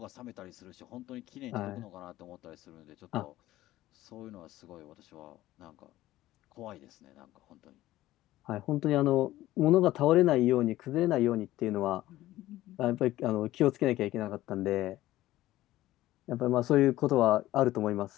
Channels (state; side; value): quieter; right; 15.6 dB